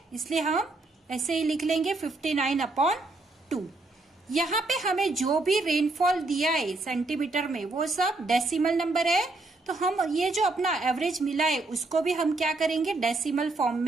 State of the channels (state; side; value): quieter; left; 3.1 dB